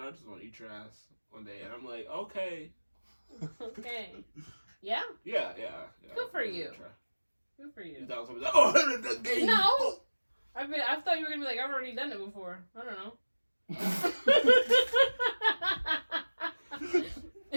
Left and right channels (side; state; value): both; inverted; correlation -1.00